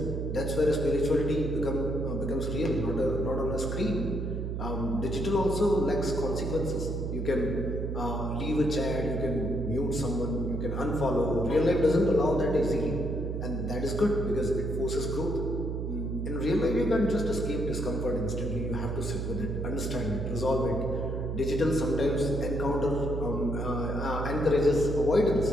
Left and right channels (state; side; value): noise; right; hum, 3 dB below the sound